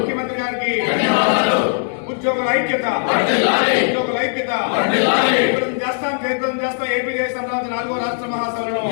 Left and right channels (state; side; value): silent; right; digital silence